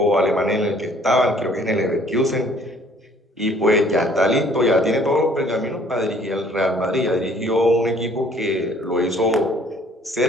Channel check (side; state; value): both; normal; correlation 0.57